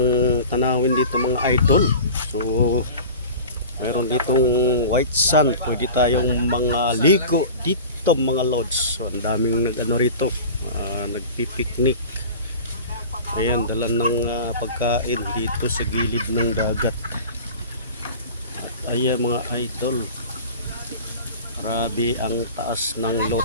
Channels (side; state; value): both; inverted; correlation -0.37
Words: tanawin dito mga idol. So mayroon ditong white sand, pwede tayong mga ligo dito mga lods. So ang daming nag-ano rito, nagpipiknik. Ayan, dala ng pagkain dito sa gilid ng dagat. At ayan mga idol, grabe ang taas ng low